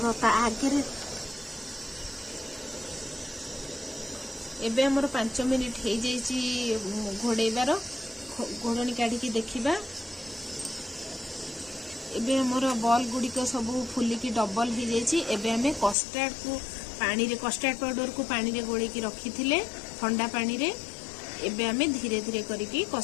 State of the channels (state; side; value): drops out; right; at 16.0 s